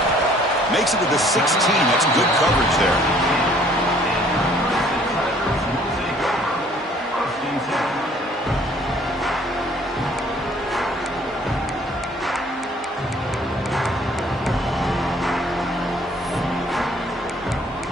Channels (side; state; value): both; normal; correlation 0.58